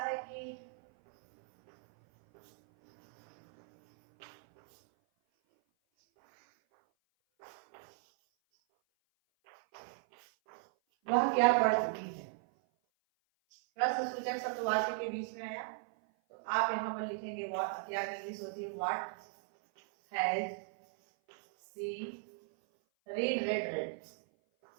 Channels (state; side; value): silent; left; 53 dB below the other